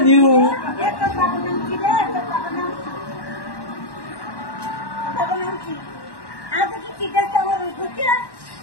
আজ কি চিটাতে আমার উঠছে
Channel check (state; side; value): late; right; 1.1 ms